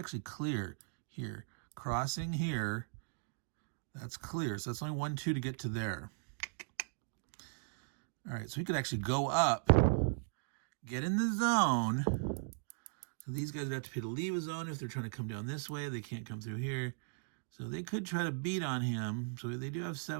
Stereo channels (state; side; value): silent; left; digital silence